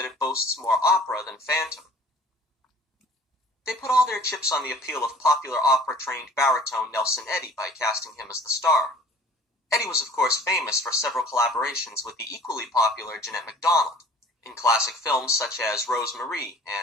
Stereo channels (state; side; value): normal; both; correlation 0.49